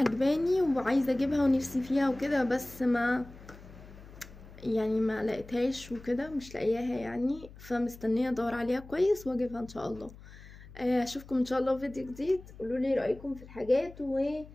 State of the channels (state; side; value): noise; left; hum, 18 dB below the sound